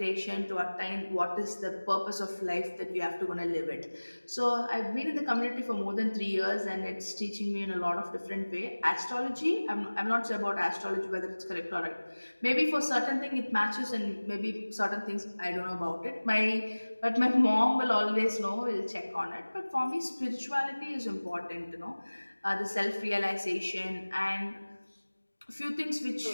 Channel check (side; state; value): both; inverted; correlation -1.00